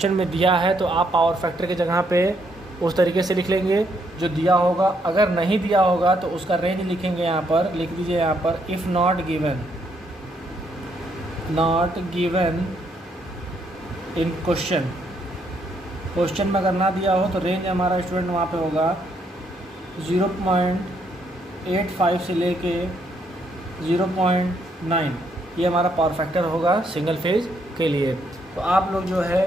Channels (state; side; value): normal; both; correlation 0.73